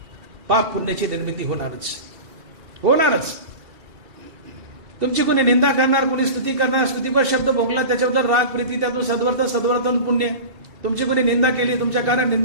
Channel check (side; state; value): left; late; 2.7 ms